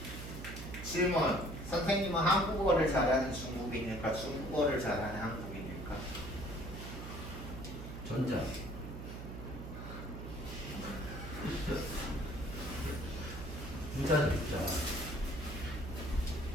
질문. 선생님은 한국어를 잘하는 중국인일까? 중국어를 잘하는 한국인일까? 전자. 부자죠, 부자.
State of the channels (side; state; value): right; noise; hum, 9 dB below the sound